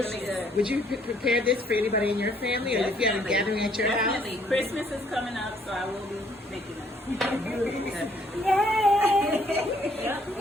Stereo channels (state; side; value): normal; both; correlation 0.65